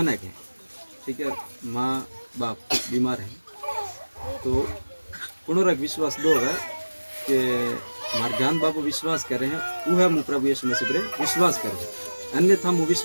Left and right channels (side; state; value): both; inverted; correlation -1.00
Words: ना के ठीक है, माँ बाप बीमार है तो पुनरक विश्वास दोगा कि मार ज्ञान बापू विश्वास कर रहे हैं वो है, मुँह प्रभु यीशु मसीह पर विश्वास करो, अन्यथा मुँह